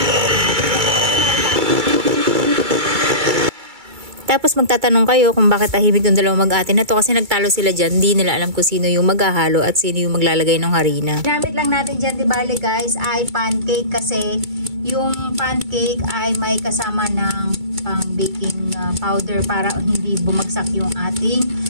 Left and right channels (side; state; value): left; late; 2.3 ms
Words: Tapos magtatanong kayo kung bakit tahimik yung dalawang mag-ate na to kasi nagtalo sila dyan. Hindi nila alam kung sino yung maghahalo at sino yung maglalagay ng harina. Ginamit lang natin dyan, di bale guys, ay pancake kasi yung pancake ay may kasama ng pang baking powder para hindi bumagsak yung ating